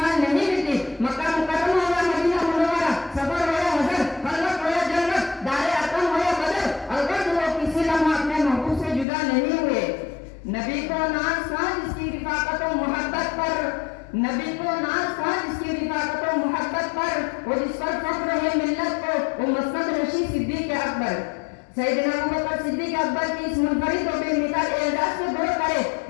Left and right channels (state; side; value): drops out; right; at 9.1 s